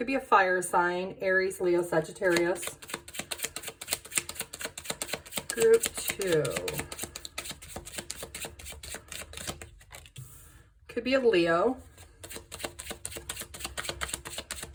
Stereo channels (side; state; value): both; identical; correlation 1.00